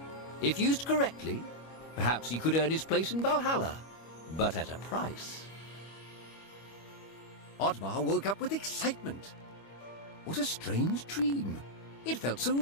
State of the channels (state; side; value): late; right; 25 ms